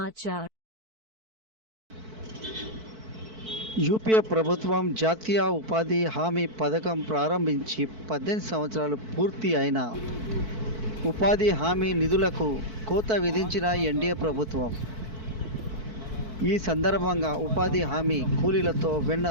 యూపీఏ ప్రభుత్వం జాతీయ ఉపాధి హామీ పథకం ప్రారంభించి 18 సంవత్సరాలు పూర్తి అయిన ఉపాధి హామీ నిధులకు కోత విధించిన ఎన్డీఏ ప్రభుత్వం. ఈ సందర్భంగా ఉపాధి హామీ కూలీలతో Venna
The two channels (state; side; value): late; left; 4.5 ms